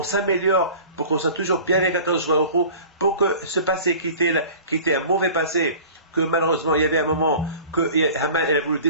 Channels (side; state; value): both; inverted; correlation -0.41